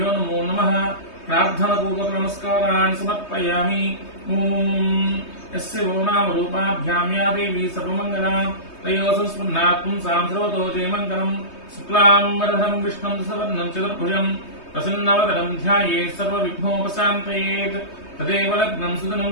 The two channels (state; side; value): late; right; 3.2 ms